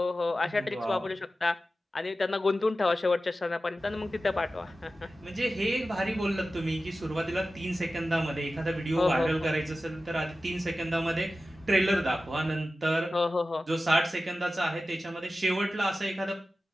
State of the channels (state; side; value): normal; both; correlation 0.94